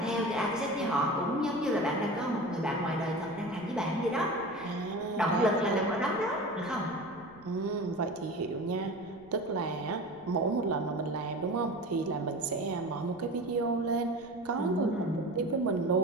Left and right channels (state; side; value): noise; right; rumble, 25 dB below the sound